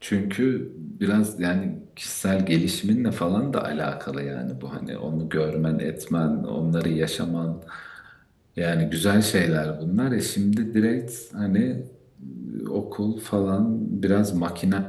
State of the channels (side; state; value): both; identical; correlation 1.00